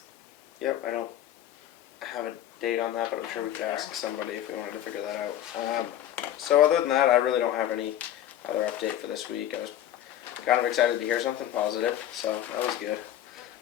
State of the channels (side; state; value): right; quieter; 11.8 dB